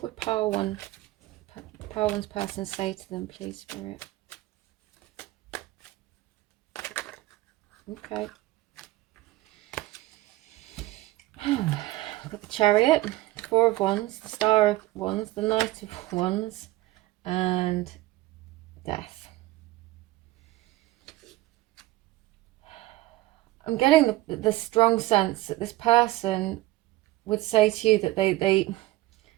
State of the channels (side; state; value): left; quieter; 17.5 dB